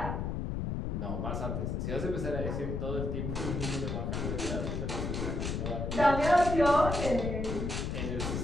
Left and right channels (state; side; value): noise; left; rumble, 2 dB below the sound